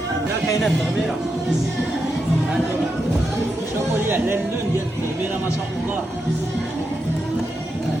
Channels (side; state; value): both; normal; correlation 0.85